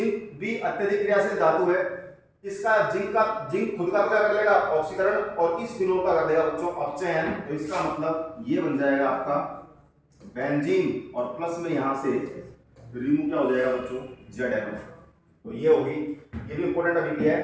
भी अत्यधिक क्रियाशील धातु है, इसका जिंक खुद का क्या कर लेगा ऑक्सीकरण, और इस फिनोल का कर देगा बच्चों अपचयन। तो इसका मतलब ये बन जाएगा आपका बेंजीन, और प्लस में यहां से रिमूव क्या हो जाएगा बच्चों ZN। तो ये होगी, ये भी इंपॉर्टेंट अभिक्रिया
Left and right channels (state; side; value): identical; both; correlation 1.00